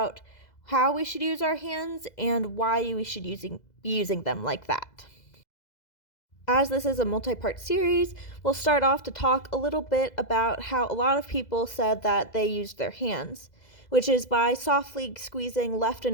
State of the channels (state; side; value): late; right; 2.0 ms